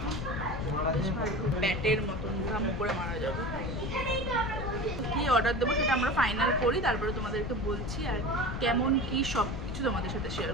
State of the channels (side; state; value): left; noise; rumble, 5 dB below the sound